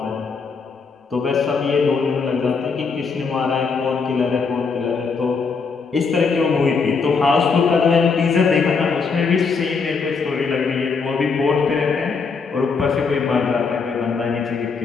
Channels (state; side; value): quieter; right; 5.0 dB